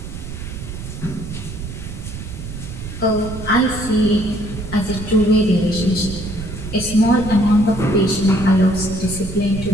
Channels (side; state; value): right; noise; rumble, 9 dB below the sound